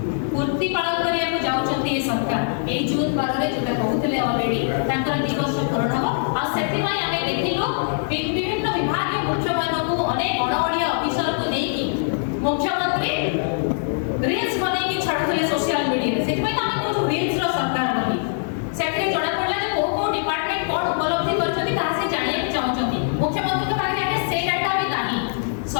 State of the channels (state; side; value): silent; right; 64 dB below the other